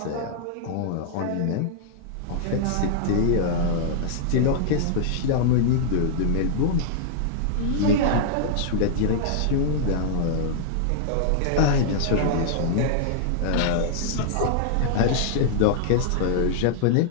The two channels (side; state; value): both; different; correlation -0.01